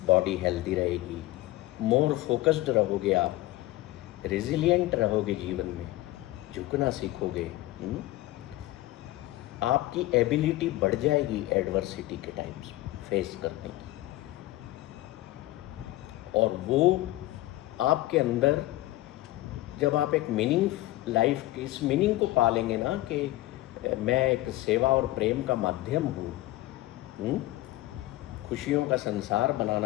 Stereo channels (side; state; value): right; quieter; 17.3 dB